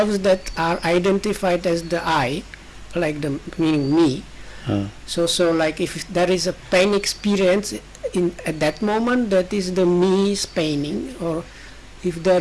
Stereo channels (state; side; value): identical; both; correlation 1.00